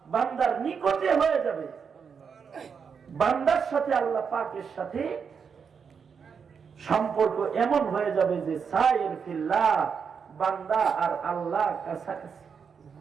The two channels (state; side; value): quieter; left; 6.3 dB